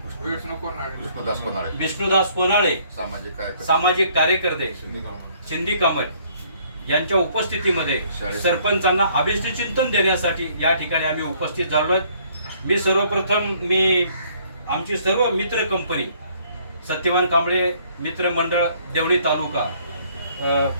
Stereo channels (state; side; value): inverted; both; correlation -0.62